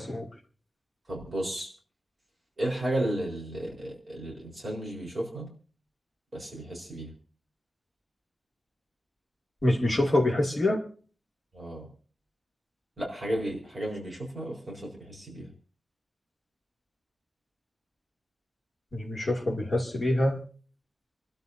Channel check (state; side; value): normal; both; correlation 0.91